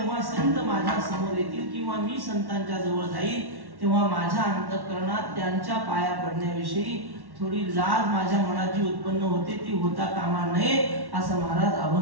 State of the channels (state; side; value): late; left; 1.1 ms